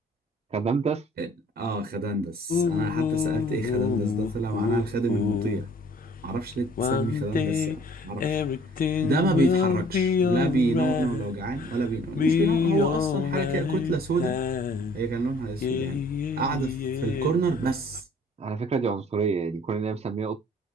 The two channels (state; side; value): normal; both; correlation 0.55